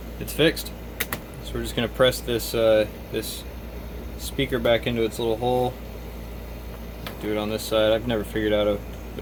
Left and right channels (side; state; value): both; identical; correlation 1.00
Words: it's fixed. So we're just gonna press this this speaker back into its little hole. Do it on this side. I've never figured out